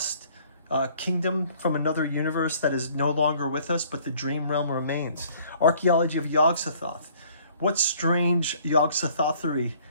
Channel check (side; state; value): both; inverted; correlation -0.57